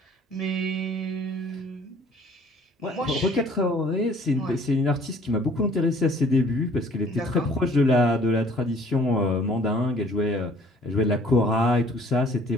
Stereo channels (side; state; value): both; normal; correlation 0.55